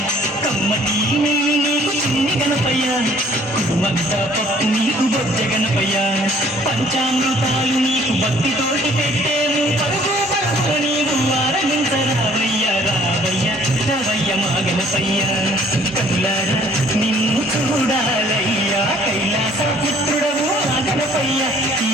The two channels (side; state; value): both; normal; correlation 0.57